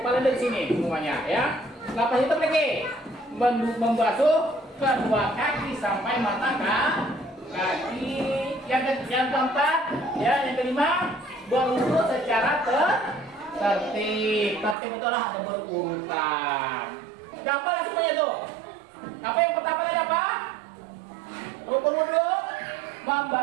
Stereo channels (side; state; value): left; drops out; at 14.8 s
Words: dari sini semuanya ya. Lepas itu lagi membasuh kedua kaki sampai mata kaki. Yang keempat ya, yang kelima berwudu secara tertib betul lah, ada berurutan. Gampang semuanya tuh. Apa yang pertama tadi apa? Rukun wudu.